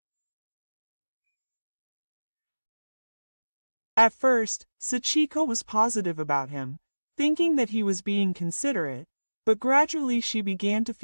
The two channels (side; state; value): both; inverted; correlation -1.00